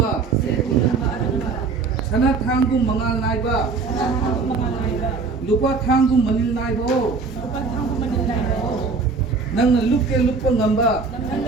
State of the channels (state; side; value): quieter; left; 4.5 dB